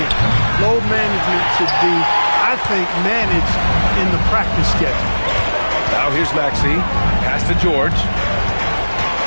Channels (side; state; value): both; inverted; correlation -1.00